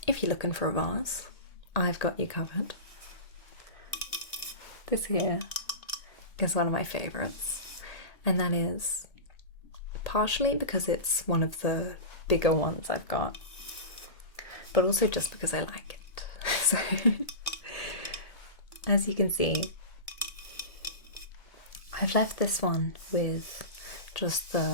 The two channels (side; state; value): right; late; 1.8 ms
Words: if you're looking for a vase, I've got you covered. This here is one of my favourites, and that is partially because it's one of the bigger ones I've got, but also just because I like it. So, as you can see, I've left this one with just